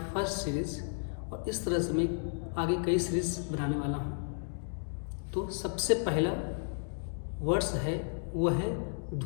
series और इस तरह से मैं आगे कई सीरीज़ बनाने वाला हूँ। तो सबसे पहला वर्ड्स है वो है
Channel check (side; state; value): right; silent; digital silence